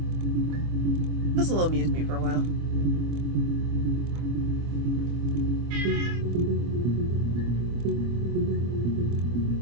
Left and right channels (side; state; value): left; late; 25 ms